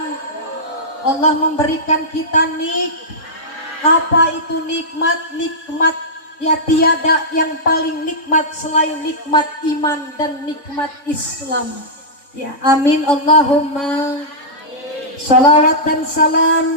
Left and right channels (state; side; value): late; right; 3.5 ms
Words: Allah memberikan kita apa itu nikmat? Nikmat ya tiada yang paling nikmat selain nikmat iman dan nikmat Islam. Ya, amin Allahumma. Salawat dan